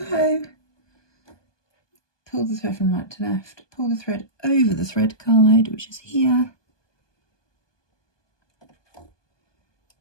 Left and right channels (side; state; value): right; late; 1.2 ms